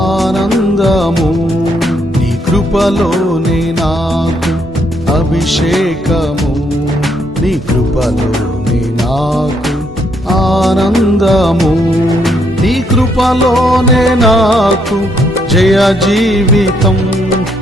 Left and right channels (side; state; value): both; normal; correlation 0.73